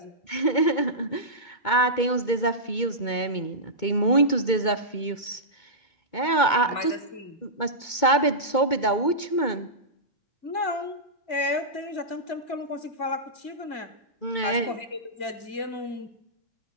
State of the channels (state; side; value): late; right; 2.2 ms